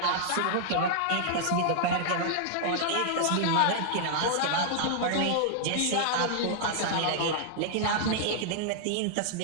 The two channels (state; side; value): different; both; correlation -0.01